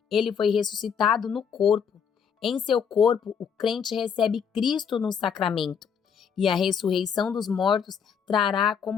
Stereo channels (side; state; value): right; quieter; 7.0 dB